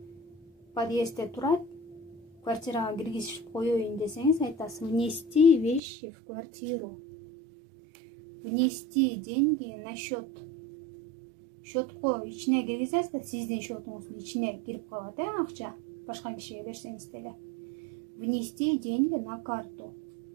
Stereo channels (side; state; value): left; drops out; at 5.8 s